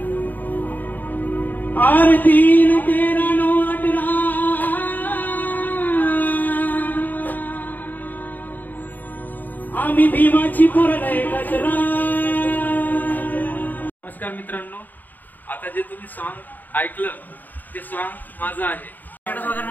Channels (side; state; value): right; late; 0.087 ms